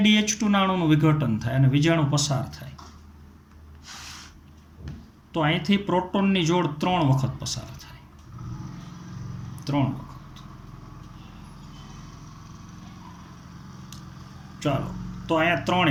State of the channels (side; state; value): both; identical; correlation 1.00